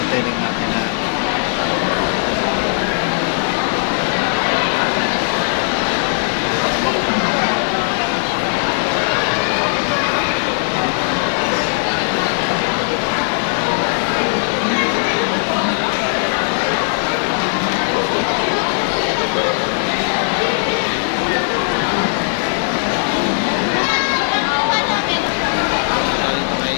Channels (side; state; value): right; silent; digital silence